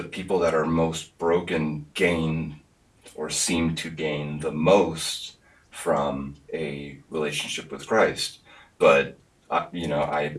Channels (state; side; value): identical; both; correlation 1.00